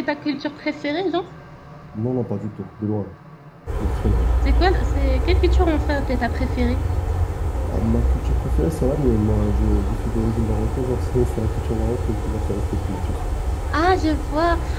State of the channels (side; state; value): both; identical; correlation 1.00